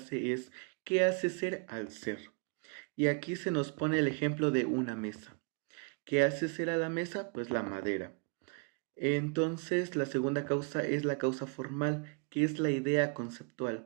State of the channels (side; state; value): left; quieter; 36.3 dB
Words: es, ¿qué hace ser al ser? Y aquí se nos pone el ejemplo de una mesa. ¿Qué hace ser a la mesa? Pues la madera. Entonces, la segunda causa es la causa formal, que es la idea